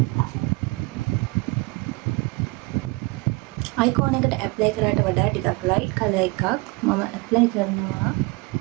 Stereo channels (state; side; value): quieter; left; 25.3 dB